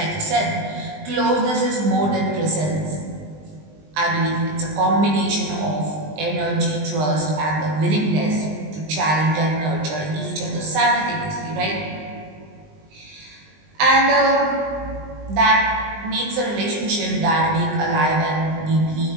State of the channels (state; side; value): late; left; 20 ms